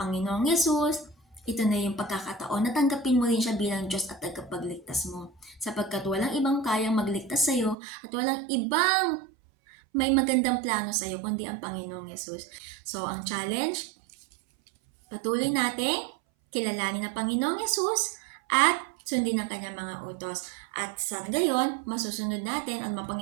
Yesus, ito na yung pagkakataon na tanggapin mo rin siya bilang Diyos at tagapagligtas mo. Sapagkat walang ibang kayang magligtas sa iyo at walang ibang may magandang plano sa iyo kundi ang Panginoong Yesus. So, ang challenge, patuloy natin kilalanin ang Panginoong Yesus at sundin ang kanyang mga utos. At sa gayon, masusunod natin at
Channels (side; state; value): left; drops out; at 7.8 s